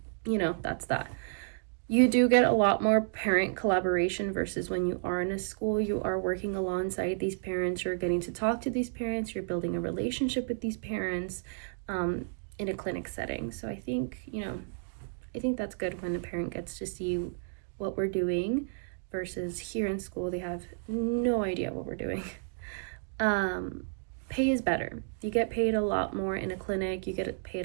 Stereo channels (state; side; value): silent; left; digital silence